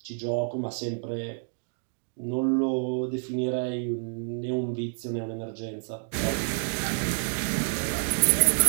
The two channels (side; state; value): left; silent; 59 dB below the other